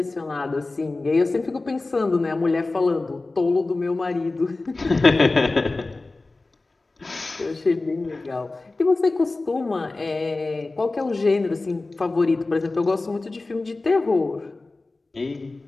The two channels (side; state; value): right; quieter; 3.3 dB